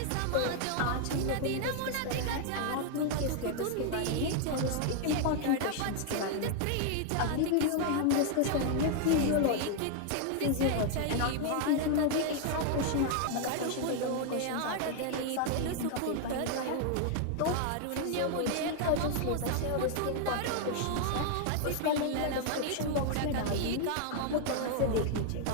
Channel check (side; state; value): both; different; correlation 0.00